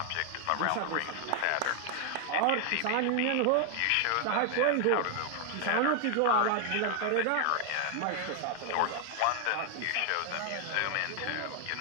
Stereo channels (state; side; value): different; both; correlation 0.00